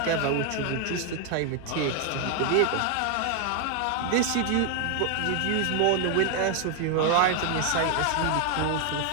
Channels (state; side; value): different; both; correlation 0.00